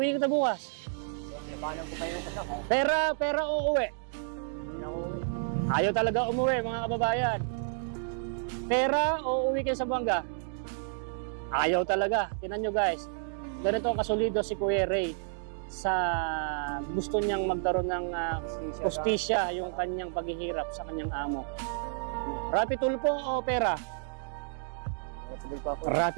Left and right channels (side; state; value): left; silent; digital silence